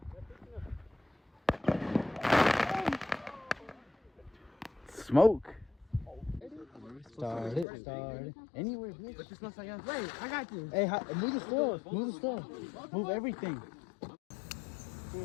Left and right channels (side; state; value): right; drops out; at 7.7 s